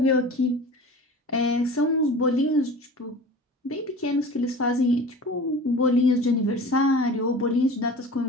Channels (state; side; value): normal; both; correlation 0.38